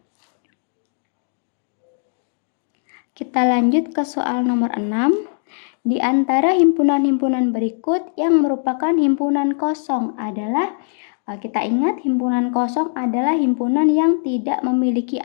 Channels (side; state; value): right; silent; 66 dB below the other